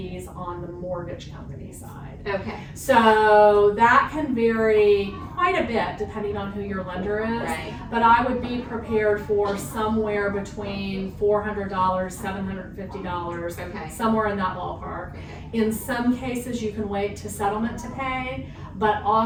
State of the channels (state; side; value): identical; both; correlation 1.00